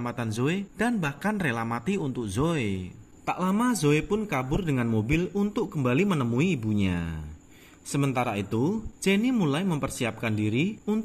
Zoe dan bahkan rela mati untuk Zoe. Tak lama Zoe pun kabur dengan mobil untuk kembali menemui ibunya. Sementara itu, Jenny mulai mempersiapkan diri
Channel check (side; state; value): both; identical; correlation 1.00